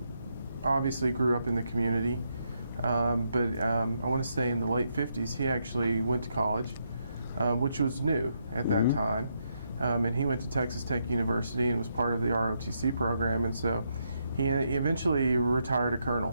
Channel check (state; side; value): inverted; both; correlation -0.79